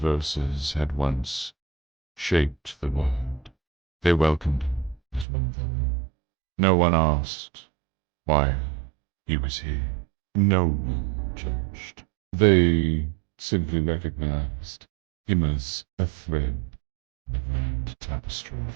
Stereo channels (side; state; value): left; drops out; at 5.2 s